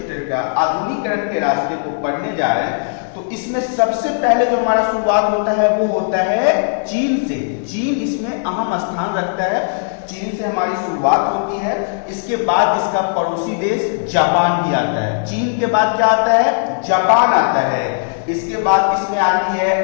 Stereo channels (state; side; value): silent; right; digital silence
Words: का आधुनिकीकरण के रास्ते को पढ़ने जा रहे हैं तो इसमें सबसे पहले जो हमारा शुरुआत होता है वो होता है चीन से। चीन इसमें अहम स्थान रखता है। चीन से हमारी शुरुआत होती है। इसके बाद इसका पड़ोसी देश जापान भी आता है। चीन के बाद क्या आता है? जापान आता है। इसके बाद इसमें आती है